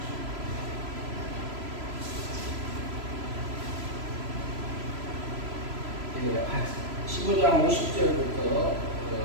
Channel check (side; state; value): left; late; 3.0 ms